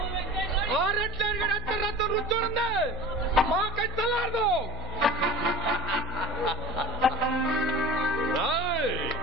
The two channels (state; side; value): noise; right; hum, 12 dB below the sound